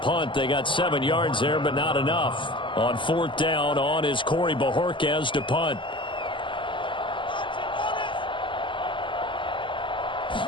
They got 7 yards there, but not enough. On 4th down, on is Corey Bojorquez to punt.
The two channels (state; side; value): late; right; 0.24 ms